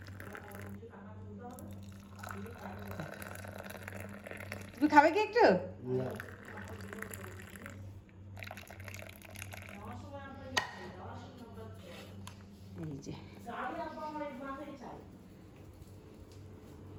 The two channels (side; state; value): both; identical; correlation 1.00